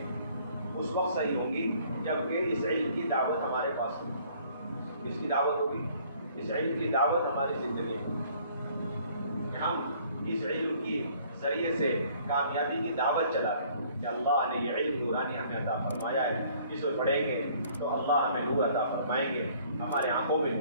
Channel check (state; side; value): inverted; both; correlation -0.58